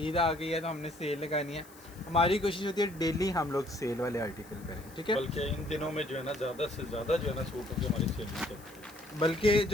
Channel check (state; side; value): noise; left; hiss, 23 dB below the sound